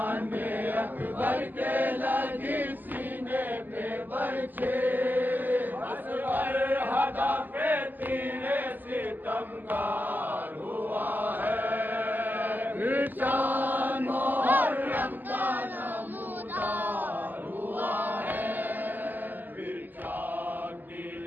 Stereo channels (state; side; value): late; left; 0.087 ms